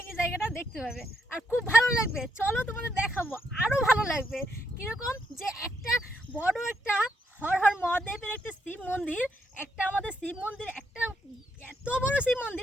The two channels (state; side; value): normal; both; correlation 0.77